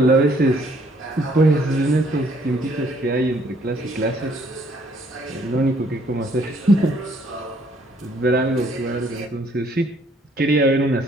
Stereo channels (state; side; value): normal; both; correlation 0.64